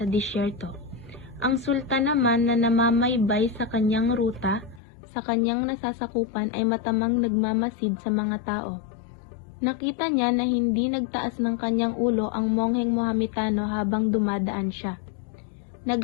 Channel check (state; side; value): drops out; right; at 4.8 s